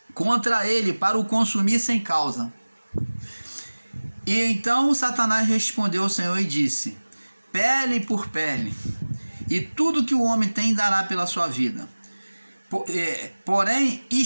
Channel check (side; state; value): both; inverted; correlation -1.00